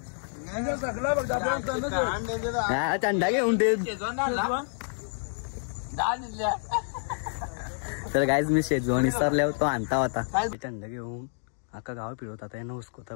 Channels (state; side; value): silent; right; digital silence